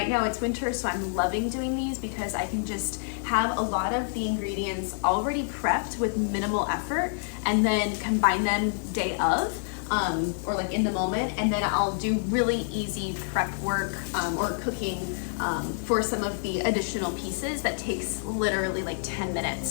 now it's winter, so I'm loving doing these because I can just have a lot of the ingredients already prepped with minimal effort and then combine them day of. Or like in the moment, and then I'll do really easy prep work or cooking for some of the additional pieces that takes literally like 10 minutes.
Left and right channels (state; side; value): silent; right; 59 dB below the other